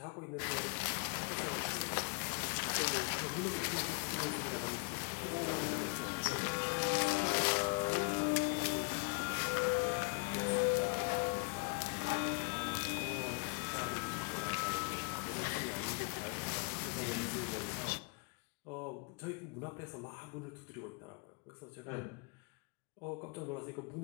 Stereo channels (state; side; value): quieter; right; 35.1 dB